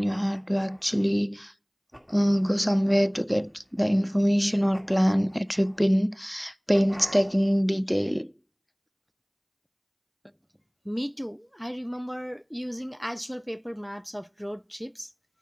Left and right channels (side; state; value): both; identical; correlation 1.00